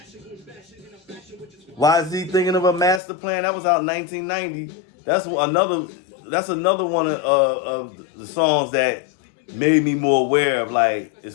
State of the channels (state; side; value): drops out; right; at 3.0 s